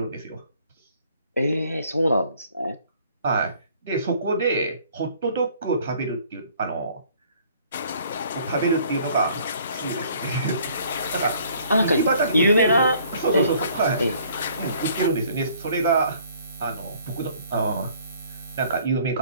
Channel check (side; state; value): both; inverted; correlation -0.58